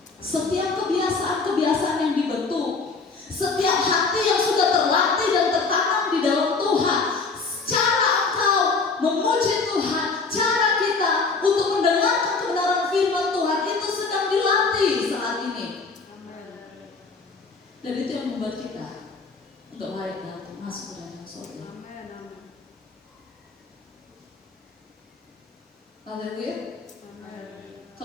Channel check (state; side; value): quieter; right; 4.3 dB